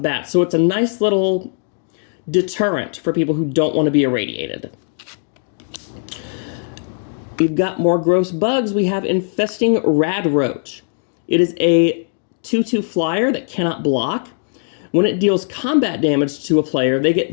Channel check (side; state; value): right; silent; digital silence